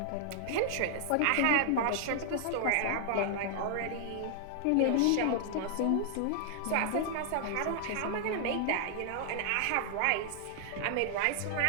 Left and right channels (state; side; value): different; both; correlation 0.00